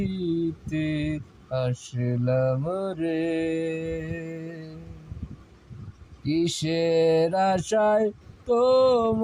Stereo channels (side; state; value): both; identical; correlation 1.00